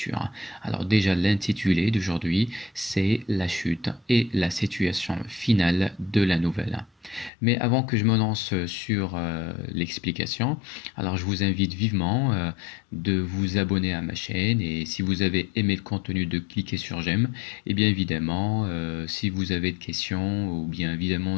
Alors déjà, l'intitulé d'aujourd'hui, c'est la chute et la situation finale de la nouvelle. Mais avant que je me lance sur l'explication, alors je vous invite vivement de vous abonner à ma chaîne et si vous avez aimé le contenu de cliquer sur j'aime et bien évidemment si vous avez des questions ou bien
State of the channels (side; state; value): right; drops out; at 7.3 s